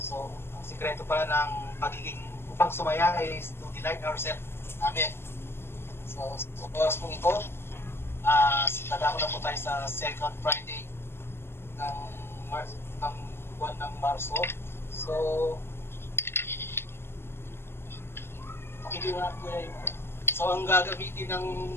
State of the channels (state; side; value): late; right; 0.12 ms